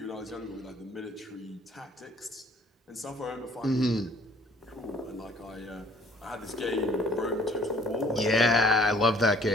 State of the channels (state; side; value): normal; both; correlation 0.56